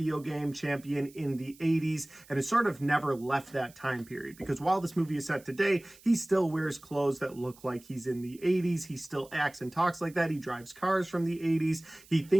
game champion in the 80s and has sort of never left that time period, because while this movie is set today, he still wears clothes that look like he's in the 80s. He still acts and talks like that. He drives cars from the 80s. He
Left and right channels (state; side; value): noise; right; hiss, 24 dB below the sound